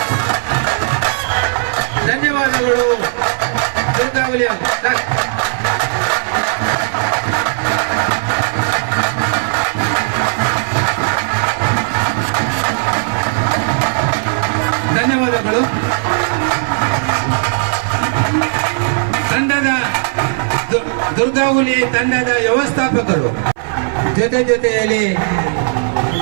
ಧನ್ಯವಾದಗಳು. ದುರ್ಗಾವಲಿ ಧನ್ಯವಾದಗಳು. ತಂಡದ ದುರ್ಗಾಹುಲಿ ತಂಡದ ವ್ಯವಸ್ಥಾಪಕರು ಜೊತೆಯಲ್ಲಿ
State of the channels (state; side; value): silent; left; 59 dB below the other